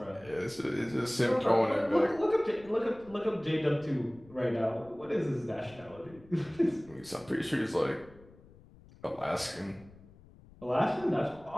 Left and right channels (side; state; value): left; noise; rumble, 23 dB below the sound